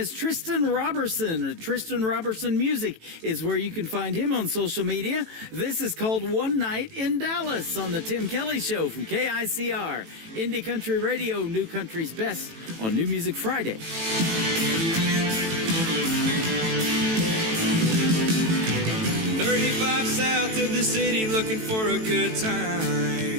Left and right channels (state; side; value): late; left; 18 ms